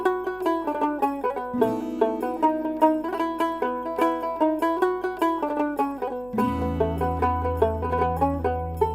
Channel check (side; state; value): right; noise; hum, 23 dB below the sound